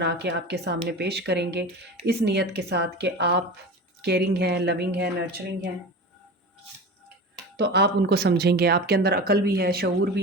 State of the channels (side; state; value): both; normal; correlation 0.31